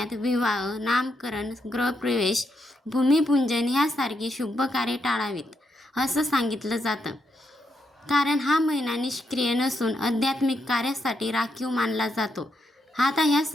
विवाह, नामकरण, गृहप्रवेश, भूमिपूजन ह्यासारखी शुभ कार्ये टाळावीत असं सांगितलं जातं. कारण हा महिना निष्क्रिय नसून आध्यात्मिक कार्यासाठी राखीव मानला जातो. आता ह्या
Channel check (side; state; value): both; normal; correlation 0.81